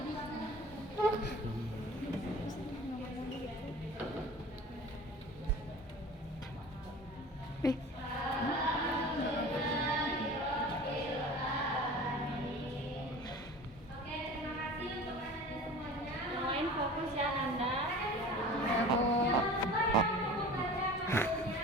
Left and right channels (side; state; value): both; normal; correlation 0.39